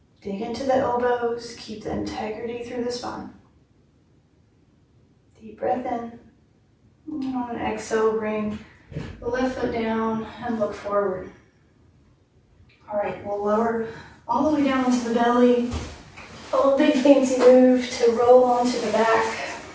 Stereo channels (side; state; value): both; identical; correlation 1.00